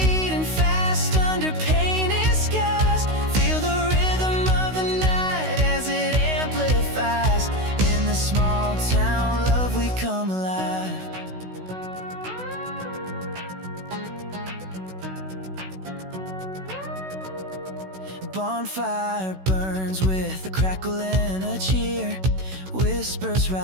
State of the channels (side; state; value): left; late; 16 ms